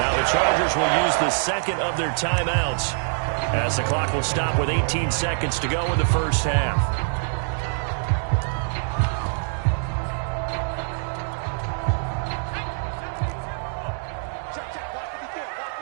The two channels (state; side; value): silent; left; digital silence